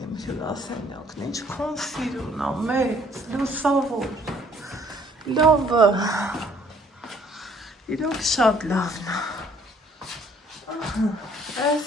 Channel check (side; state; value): both; normal; correlation 0.61